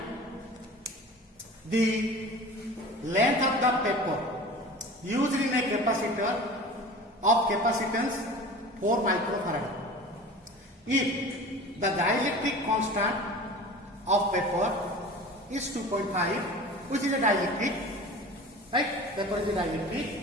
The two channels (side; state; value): both; normal; correlation 0.38